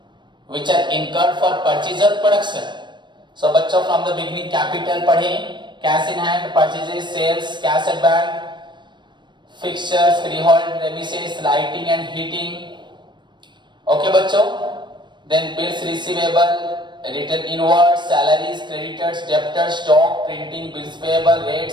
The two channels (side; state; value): left; late; 0.22 ms